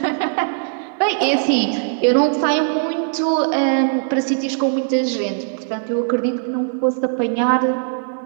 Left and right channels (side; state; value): left; silent; 64 dB below the other